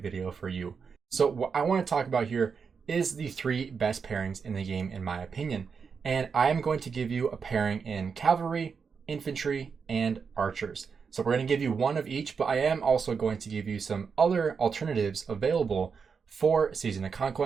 video for you. So what I want to talk about here is the 3 best pairings in the game in my opinion. And I am going to give you a pairing in cavalry, infantry, and archers. So we're going to give you one of each, but I am also going to give you some other alternatives available for Season of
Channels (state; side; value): quieter; left; 5.8 dB